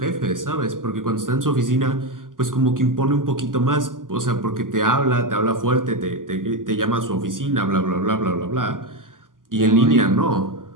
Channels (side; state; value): left; late; 0.90 ms